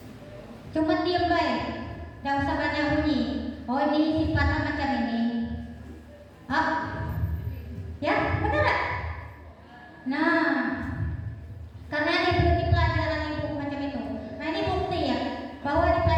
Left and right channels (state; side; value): identical; both; correlation 1.00